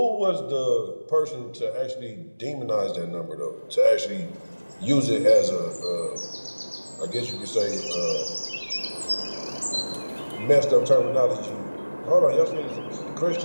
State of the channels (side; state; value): both; inverted; correlation -1.00